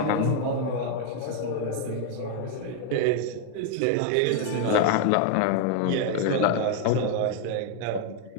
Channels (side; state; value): both; different; correlation 0.00